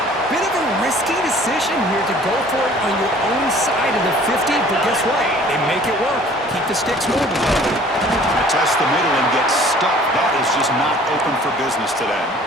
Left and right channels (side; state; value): both; normal; correlation 0.52